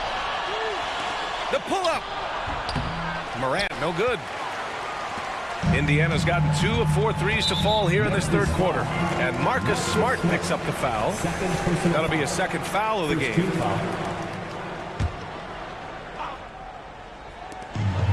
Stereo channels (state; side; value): identical; both; correlation 1.00